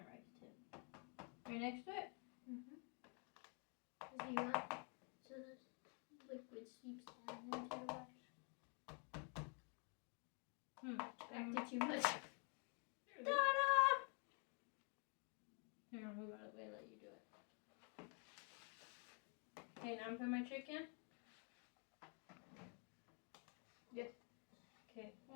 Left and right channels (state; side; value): quieter; right; 38.2 dB